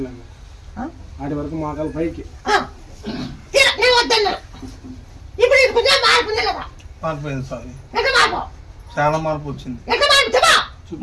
ఆడి వరకు మాకాలు పైకి నేను వద్దన్నా ఇప్పుడు ఇది కొంచెం మార్పు ఉంది కదా మారిపోయింది స్వామి ఎట్లా మార్పు చాలా మార్పు వచ్చింది ఎట్లా మార్పు చెప్పా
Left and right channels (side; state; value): both; identical; correlation 1.00